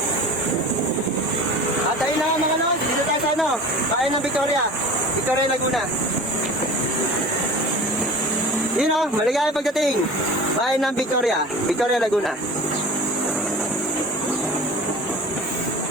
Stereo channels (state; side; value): normal; both; correlation 0.38